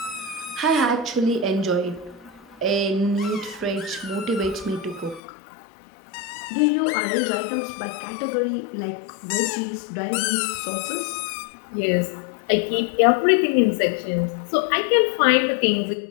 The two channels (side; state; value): right; drops out; at 5.2 s